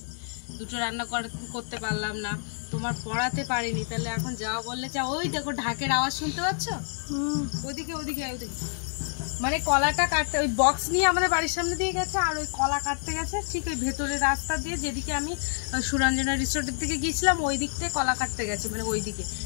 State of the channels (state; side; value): silent; right; 59 dB below the other